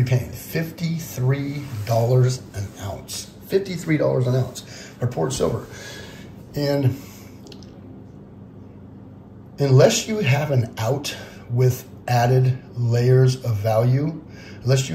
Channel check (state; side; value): identical; both; correlation 1.00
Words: be paying $53 an ounce. $53 an ounce for poured silver. And unless you have an out with added layers of value, unless